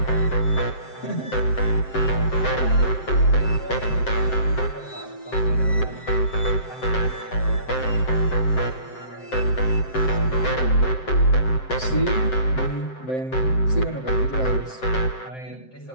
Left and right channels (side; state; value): right; late; 7.7 ms